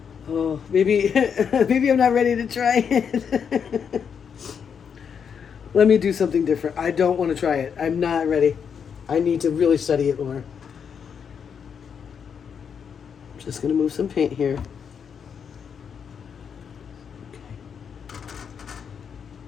Oh, maybe I'm not ready to try it. Let me do something different. I don't want to try it. I'm not ready. I need to really study it more. Just going to move some paint here. Okay.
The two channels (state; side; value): quieter; right; 7.1 dB